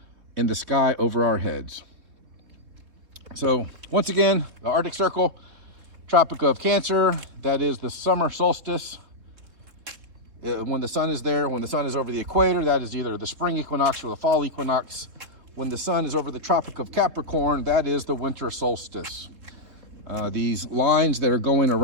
in the sky over our heads. So once again, the Arctic Circle, Tropic of Cancer, that is the summer solstice. When the sun is there, when the sun is over the equator, that is either the spring equinox or the fall equinox. When the sun is over the Tropic of Capricorn, that is the winter solstice. These lines that are going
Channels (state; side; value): late; left; 3.7 ms